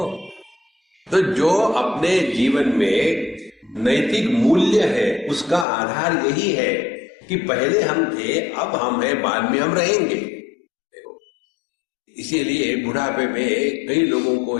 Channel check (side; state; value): right; drops out; at 5.7 s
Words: तो जो अपने जीवन में नैतिक मूल्य है उसका आधार यही है कि पहले हम थे, अब हम हैं, बाद में हम रहेंगे। देखो, इसीलिए बुढ़ापे में कई लोगों को